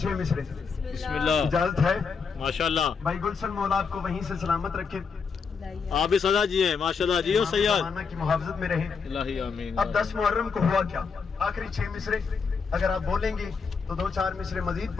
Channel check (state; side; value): quieter; right; 5.5 dB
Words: 6 मिसरे। बिस्मिल्लाह। इजाजत है? माशाल्लाह। भाई गुलशन मौला आपको वहीं से सलामत रखे, आप भी सदा जिए माशाल्लाह, जियो सैयद की मुहाफजत में रहे। इलाही आमीन। अब 10 मुहर्रम को हुआ क्या? आखिरी 6 मिसरे अगर आप बोलेंगे तो 2-4 मिसरे मजीद